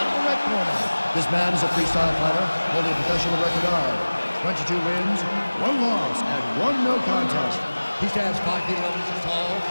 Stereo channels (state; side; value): inverted; both; correlation -1.00